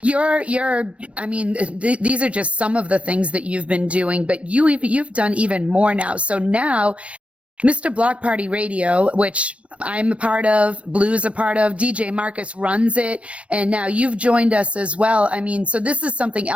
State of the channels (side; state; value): left; late; 0.062 ms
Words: these are just some of the things that you've been doing, but you've done even more now. So now Mr. Block Party Radio, which I'm a part of, Blue's a part of, DJ Marcus runs it, and now you've joined us as well. I mean, so this is something